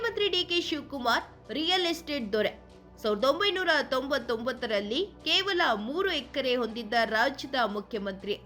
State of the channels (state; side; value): identical; both; correlation 1.00